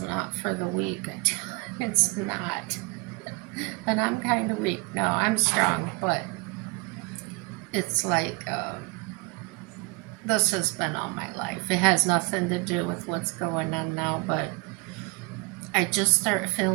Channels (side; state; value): left; quieter; 26.9 dB